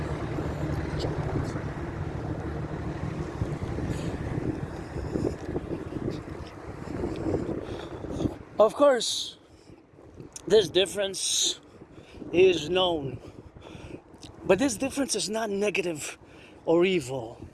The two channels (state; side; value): identical; both; correlation 1.00